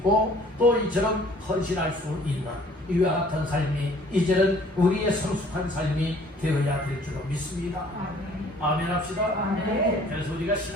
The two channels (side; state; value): both; normal; correlation 0.55